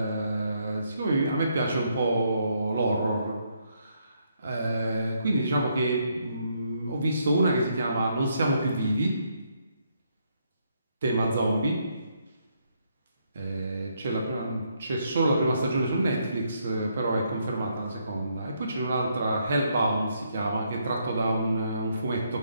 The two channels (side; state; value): both; inverted; correlation -0.74